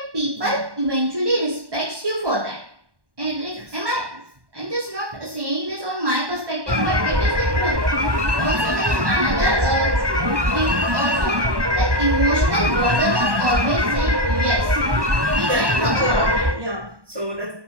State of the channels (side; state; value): left; late; 1.2 ms